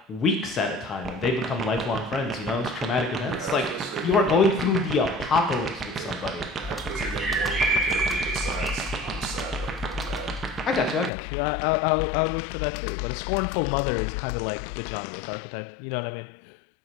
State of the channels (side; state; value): right; drops out; at 11.1 s